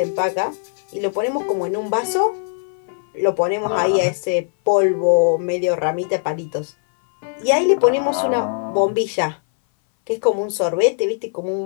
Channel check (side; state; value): right; silent; 60 dB below the other